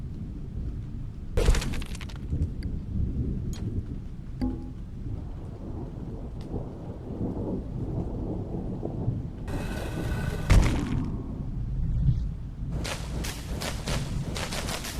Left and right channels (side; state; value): both; identical; correlation 1.00